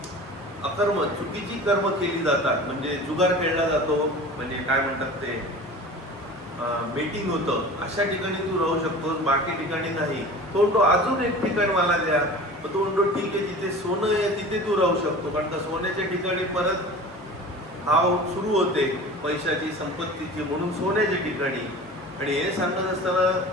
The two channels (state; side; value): normal; both; correlation 0.38